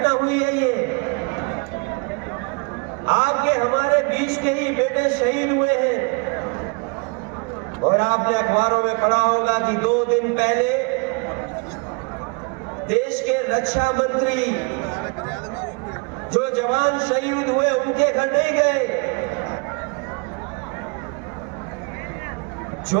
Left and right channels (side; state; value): left; quieter; 33.2 dB